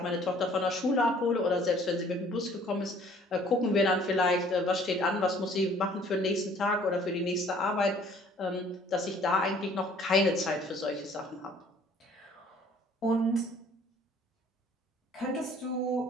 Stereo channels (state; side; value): normal; both; correlation 0.56